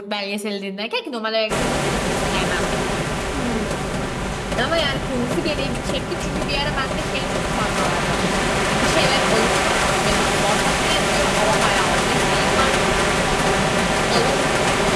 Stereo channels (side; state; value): both; identical; correlation 1.00